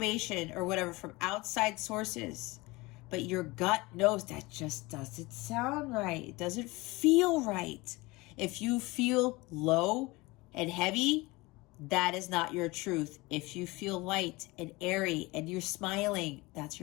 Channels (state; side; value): quieter; right; 22.7 dB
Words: or whatever from outside sources, but your gut knows that just doesn't sound right. It doesn't feel right. If you feel low and heavy, that is not your truth. If you feel light and airy and you're smiling, that's